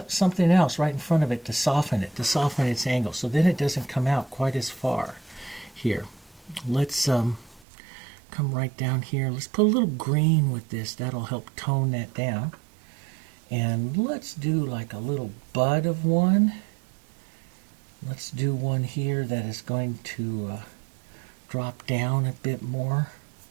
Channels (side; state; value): left; drops out; at 7.6 s